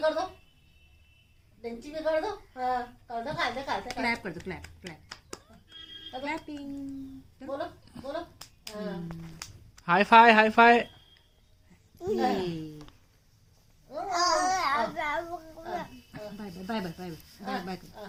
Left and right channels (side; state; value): both; identical; correlation 1.00